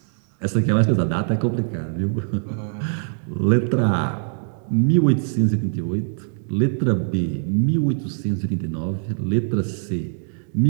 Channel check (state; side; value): silent; left; digital silence